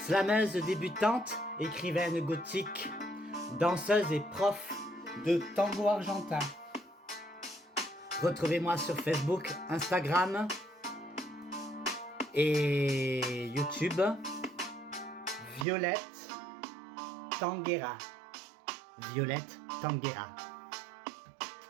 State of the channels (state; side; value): drops out; left; at 15.7 s